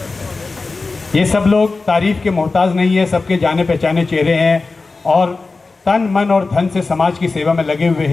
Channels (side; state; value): right; quieter; 3.8 dB